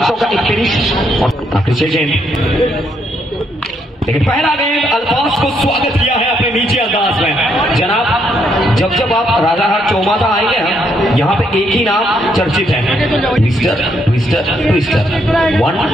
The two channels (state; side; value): normal; both; correlation 0.74